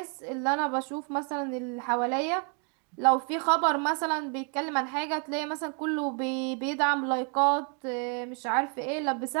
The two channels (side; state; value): left; quieter; 39.3 dB